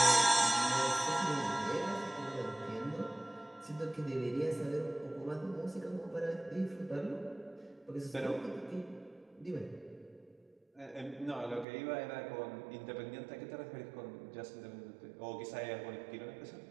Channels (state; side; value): drops out; left; at 11.7 s